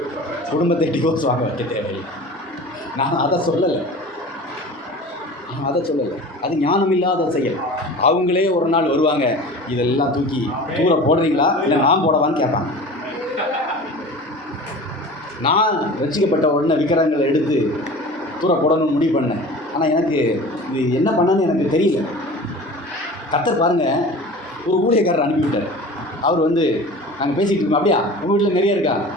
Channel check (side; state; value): both; normal; correlation 0.38